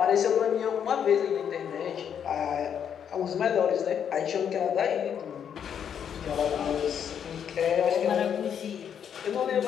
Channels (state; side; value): quieter; right; 8.3 dB